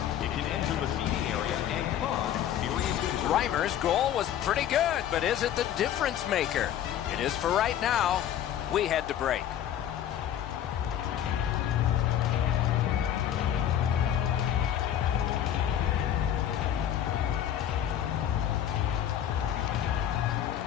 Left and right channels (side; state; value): right; quieter; 10.6 dB